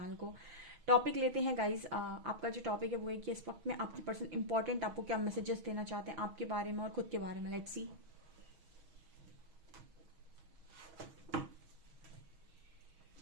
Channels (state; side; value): late; left; 6.3 ms